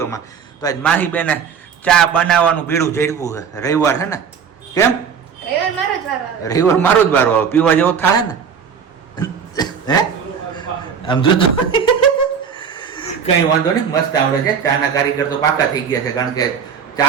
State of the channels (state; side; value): quieter; left; 7.0 dB